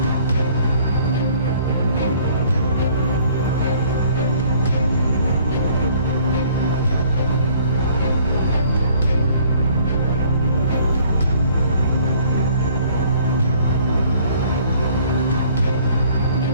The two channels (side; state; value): both; inverted; correlation -0.57